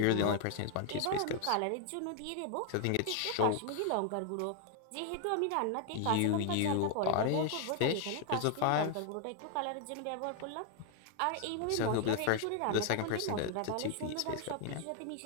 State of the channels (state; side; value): different; both; correlation 0.00